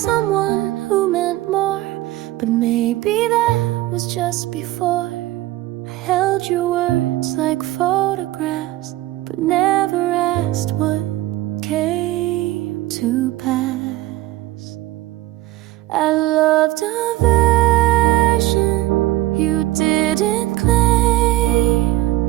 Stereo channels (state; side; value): quieter; left; 16.7 dB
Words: who meant more, but maybe that was just before. I held your words like photographs, but never asked what came to pass. I loved a version you didn't claim.